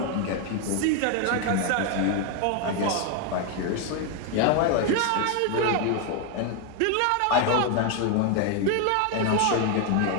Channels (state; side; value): different; both; correlation 0.01